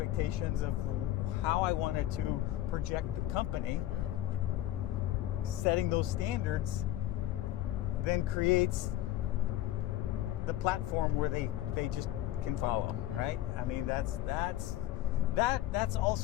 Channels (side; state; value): right; quieter; 13.8 dB